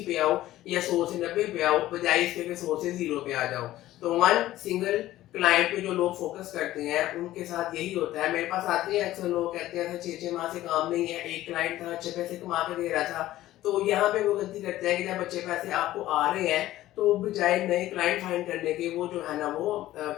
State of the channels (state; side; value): quieter; right; 15.0 dB